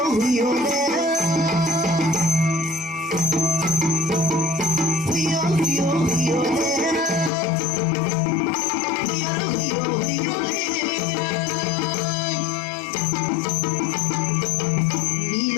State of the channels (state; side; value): drops out; right; at 7.3 s